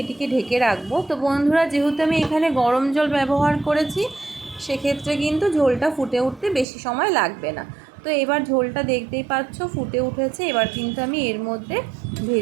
এটিকে ঢেকে রাখবো। তো বন্ধুরা, যেহেতু আমি এখানে গরম জল ব্যবহার করেছি, সেক্ষেত্রে কিন্তু ঝোলটা ফুটে উঠতে বেশি সময় লাগবে না। তো এবার ঝোলটা দেখতেই পাচ্ছ ফুটে উঠেছে। এবার কিন্তু আমি এর মধ্যে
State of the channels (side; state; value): left; drops out; at 6.7 s